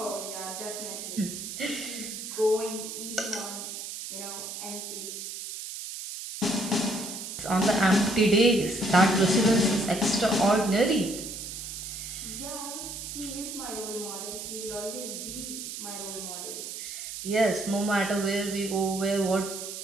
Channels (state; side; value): noise; right; hiss, 8 dB below the sound